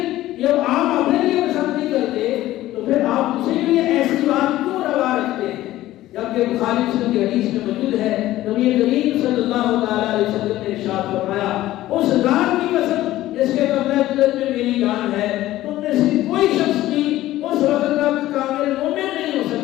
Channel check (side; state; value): right; quieter; 15.3 dB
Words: جب آپ اپنے لیے پسند نہیں کرتے تو پھر آپ دوسرے کے لیے ایسی بات کیوں روا رکھتے ہیں؟ جبکہ بخاری مسلم کی حدیث میں موجود ہے نبی کریم صلی اللہ تعالی علیہ وسلم نے ارشاد فرمایا اس ذات کی قسم جس کے قبضہ قدرت میں میری جان ہے، تم میں سے کوئی شخص بھی اس وقت تک کامل مومن نہیں ہو